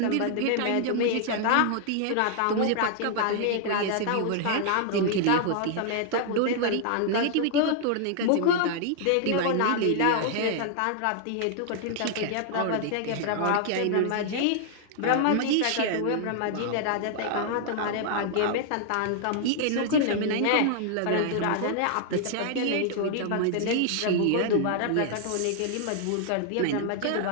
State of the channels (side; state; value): both; different; correlation 0.00